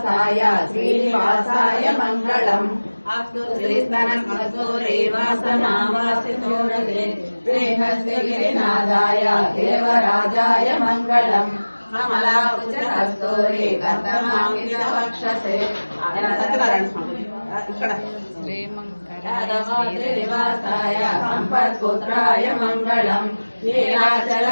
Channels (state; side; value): inverted; both; correlation -1.00